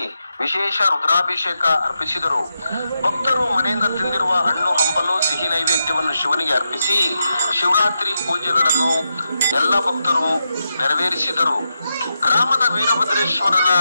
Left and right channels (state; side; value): inverted; both; correlation -0.87